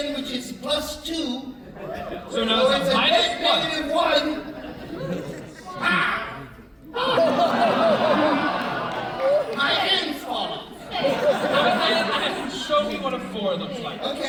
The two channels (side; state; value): both; identical; correlation 1.00